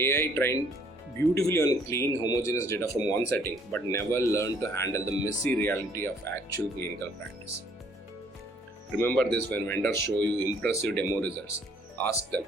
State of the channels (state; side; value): normal; both; correlation 0.62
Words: trained beautifully on clean, homogeneous data from one setting, but never learned to handle the messy reality of actual clinical practice. Remember this when vendors show you impressive demo results. Ask them,